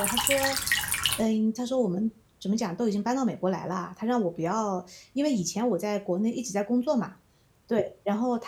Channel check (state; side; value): identical; both; correlation 1.00